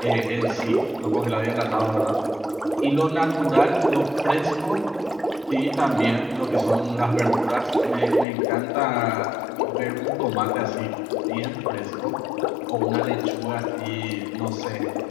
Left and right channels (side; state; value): right; drops out; at 8.2 s